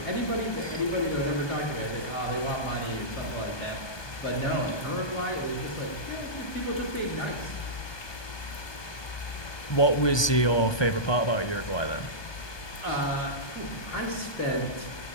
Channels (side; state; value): right; late; 1.2 ms